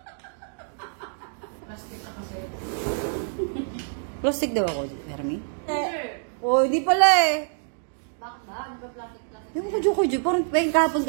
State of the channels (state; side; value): silent; left; digital silence